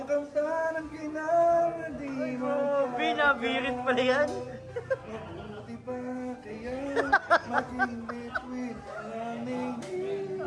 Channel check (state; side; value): identical; both; correlation 1.00